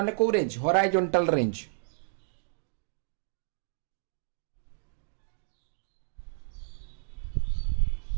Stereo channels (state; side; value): silent; left; digital silence